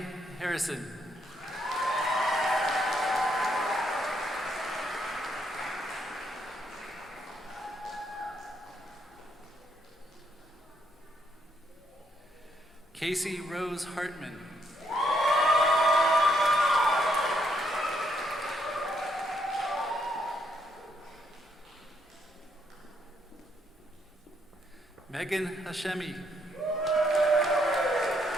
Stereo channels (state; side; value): normal; both; correlation 0.74